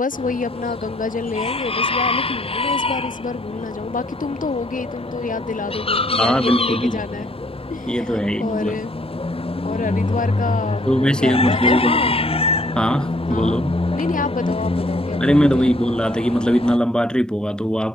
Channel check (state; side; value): normal; both; correlation 0.65